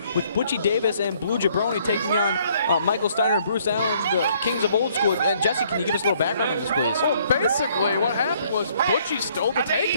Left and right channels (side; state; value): both; inverted; correlation -0.64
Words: with Butchie Davis and Blue Jabroni taking on Michael Steiner and Bruce Allen, the Kings of Old School. And Jesse, can you give us a little background on this, please? Well, basically, what happened was Butchie stole the tag